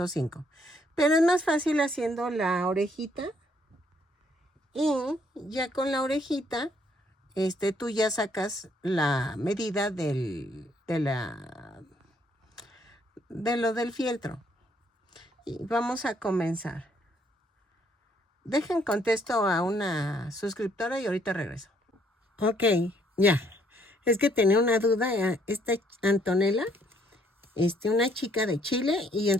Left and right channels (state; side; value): normal; both; correlation 0.67